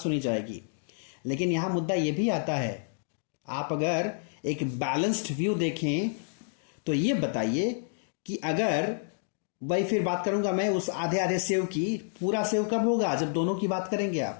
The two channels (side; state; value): right; silent; digital silence